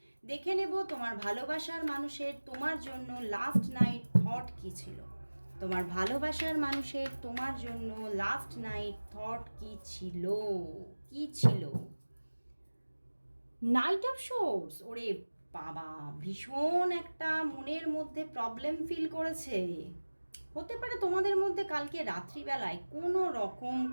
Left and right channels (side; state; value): both; inverted; correlation -1.00